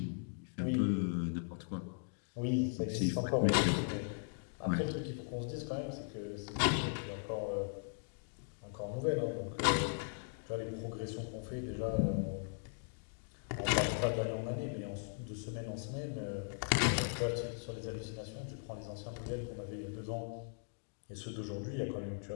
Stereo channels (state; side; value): silent; right; digital silence